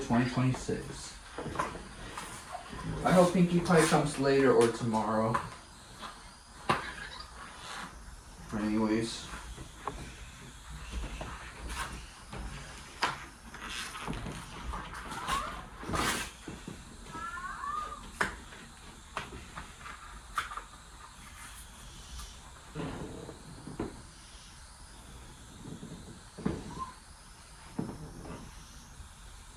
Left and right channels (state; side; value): identical; both; correlation 1.00